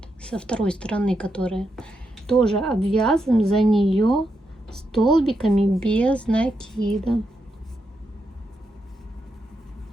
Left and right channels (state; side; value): normal; both; correlation 0.83